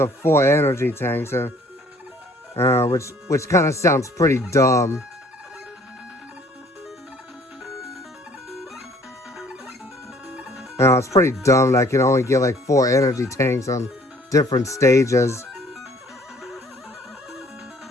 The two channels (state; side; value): normal; both; correlation 0.57